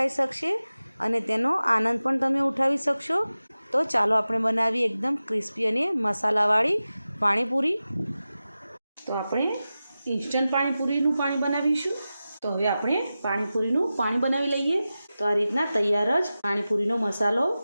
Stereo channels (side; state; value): both; inverted; correlation -0.94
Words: શકશે અને તેનો આનંદ પણ તમે ઉઠાવી શકશો। તો ચાલો આપણે બનાવીએ એકદમ ક્રિસ્પી અને મસાલાવાળી પાણીપુરી। તો આપણે ઇન્સ્ટન્ટ પાણીપુરીનું પાણી બનાવીશું। તો હવે આપણે પાણીપુરીનું પાણી બનાવી લઈએ। તો આ રીતના તૈયાર જ પાણીપુરીનો મસાલો